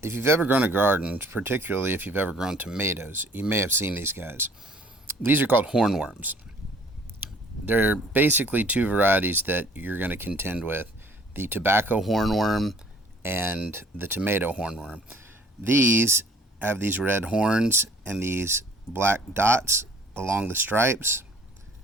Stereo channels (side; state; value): both; normal; correlation 0.55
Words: If you've ever grown a garden, particularly if you've ever grown tomatoes, you may have seen these guys. These are called hornworms. They're basically two varieties that you're going to contend with: the tobacco hornworm and the tomato hornworm. These have these red horns and these black dots along the stripes,